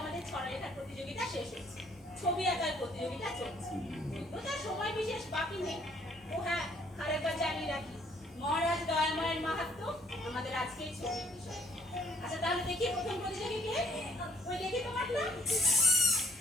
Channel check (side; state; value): both; normal; correlation 0.64